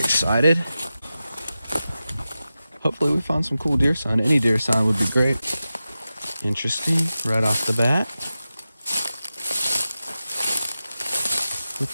Hopefully we find some cool deer sign. Any deer sign would be great. Interesting, right off the bat.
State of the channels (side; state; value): both; inverted; correlation -0.93